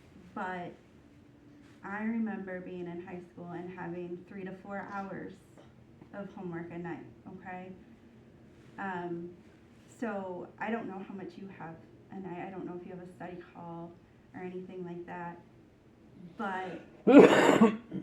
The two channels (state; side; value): identical; both; correlation 1.00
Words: but I remember being in high school and having 3 to 4 hours of homework a night, okay? So I don't know how much you have a night. I don't know if you have a study hall or anything like that. But,